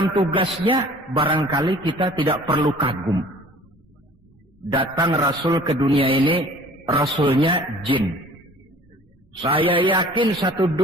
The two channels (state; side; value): normal; both; correlation 0.49